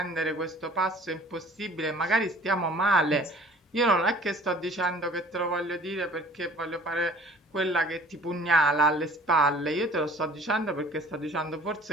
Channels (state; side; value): normal; both; correlation 0.50